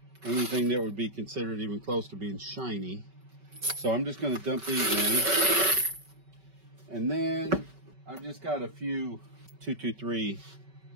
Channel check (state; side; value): late; left; 5.2 ms